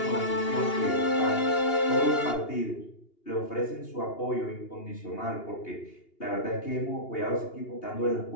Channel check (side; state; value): right; late; 2.8 ms